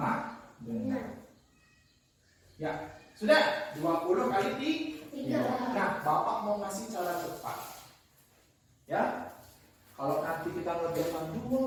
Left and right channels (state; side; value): identical; both; correlation 1.00